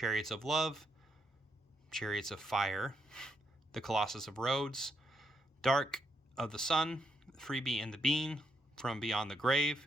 of Love, Chariots of Fire, The Colossus of Rhodes, Dark of the Sun, Freebie and the Bean, From Beyond the Grave,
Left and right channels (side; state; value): both; normal; correlation 0.79